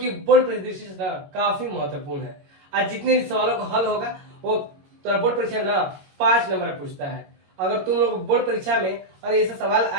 बोर्ड परीक्षा दृष्टि से काफी महत्वपूर्ण है। आज जितने सवालों का हल होगा वो तो बोर्ड परीक्षा में ना 5 नंबर पूछता है। अगर तुम लोग बोर्ड परीक्षा में और ऐसा सवाल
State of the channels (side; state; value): left; late; 22 ms